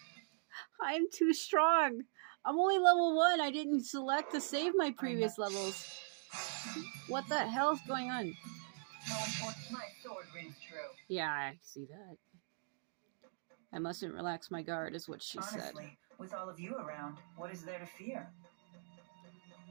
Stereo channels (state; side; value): silent; left; digital silence